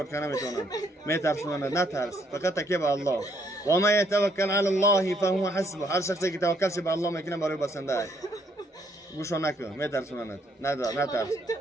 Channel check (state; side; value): normal; both; correlation 0.70